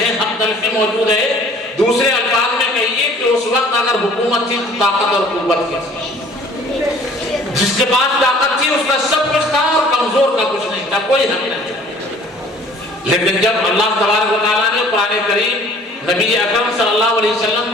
حق تلفی موجود ہے. دوسرے الفاظ میں کہیے کہ اس وقت اگر حکومت تھی تو طاقت اور قوت کی تھی. جس کے پاس طاقت تھی اس کا سب کچھ تھا اور کمزور کا کچھ نہیں تھا، کوئی حق نہیں تھا. لیکن جب اللہ تبارک و تعالیٰ نے قرآن کریم نبی اکرم صلی اللہ علیہ وسلم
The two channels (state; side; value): normal; both; correlation 0.52